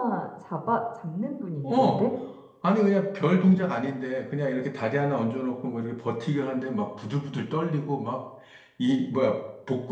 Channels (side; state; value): both; identical; correlation 1.00